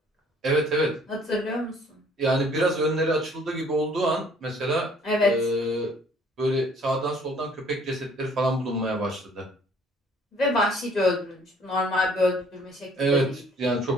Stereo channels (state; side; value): normal; both; correlation 0.58